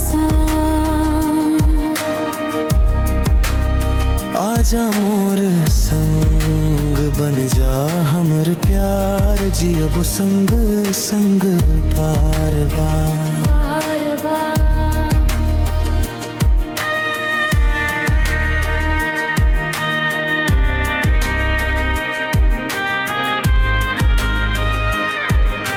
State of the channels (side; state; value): both; identical; correlation 1.00